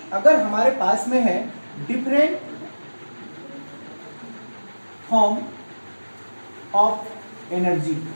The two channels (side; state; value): both; inverted; correlation -1.00